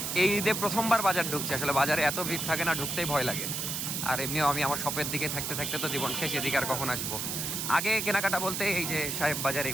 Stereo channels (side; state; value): right; noise; hiss, 2 dB below the sound